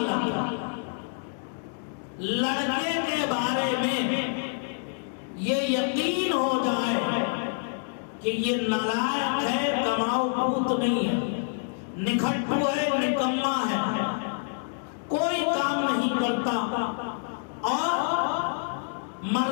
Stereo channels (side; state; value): right; silent; digital silence